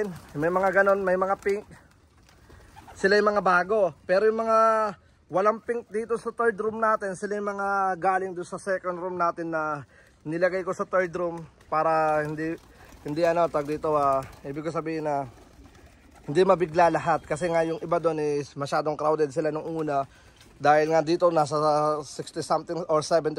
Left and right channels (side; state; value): both; identical; correlation 1.00